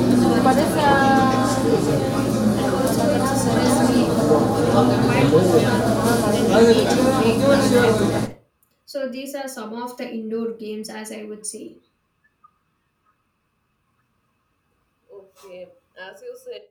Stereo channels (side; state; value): both; identical; correlation 1.00